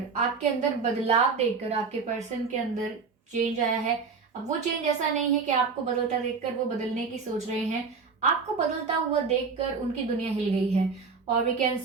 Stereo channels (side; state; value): left; quieter; 5.0 dB